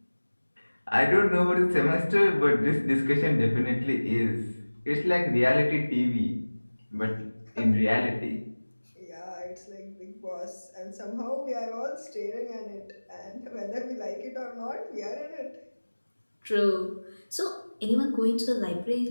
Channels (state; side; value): inverted; both; correlation -1.00